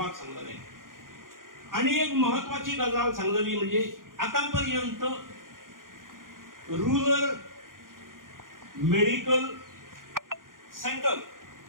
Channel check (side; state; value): left; late; 0.90 ms